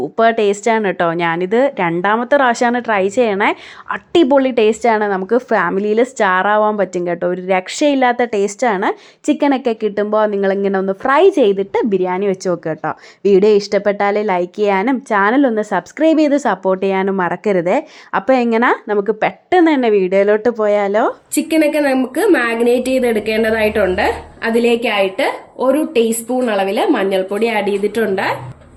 ടേസ്റ്റാണ് കേട്ടോ. ഞാനിത് രണ്ടാമത്തെ പ്രാവശ്യമാണ് ട്രൈ ചെയ്യണേ. അടിപൊളി ടേസ്റ്റാണ്. നമുക്ക് ഫാമിലിയിൽ സ്റ്റാറാവാൻ പറ്റും കേട്ടോ. ഒരു രക്ഷയില്ലാത്ത ടേസ്റ്റാണ്. ചിക്കനൊക്കെ കിട്ടുമ്പോൾ നിങ്ങളിങ്ങനെ ഒന്ന് ഫ്രൈ ചെയ്തിട്ട് ബിരിയാണി വെച്ച് നോക്കുക കേട്ടോ. വീഡിയോ ഇഷ്ടപ്പെട്ടാൽ ലൈക്ക് ചെയ്യാനും ചാനലൊന്ന് സബ്സ്ക്രൈബ് ചെയ്ത് സപ്പോർട്ട് ചെയ്യാനും മറക്കരുതേ. അപ്പോൾ എങ്ങനെ നമുക്ക് പെട്ടെന്ന് തന്നെ വീഡിയോയിലോട്ട് പോയാലോ? ചിക്കനൊക്കെ നമുക്ക് മാഗ്നേറ്റ് ചെയ്തെടുക്കേണ്ടതായിട്ടുണ്ട്. അതിലേക്കായിട്ട് 1 ടീസ്പൂൺ അളവില് മഞ്ഞൾപ്പൊടി ആഡ് ചെയ്തിട്ടുണ്ട്.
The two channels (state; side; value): identical; both; correlation 1.00